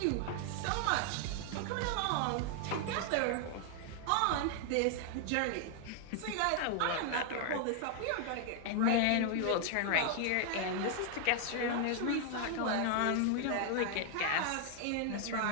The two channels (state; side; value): different; both; correlation 0.00